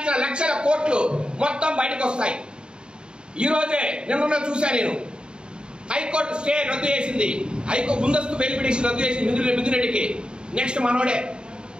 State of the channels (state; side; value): late; left; 0.050 ms